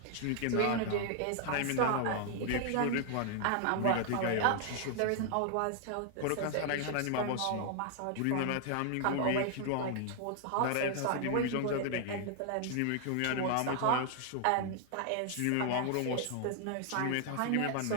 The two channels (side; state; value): both; different; correlation 0.00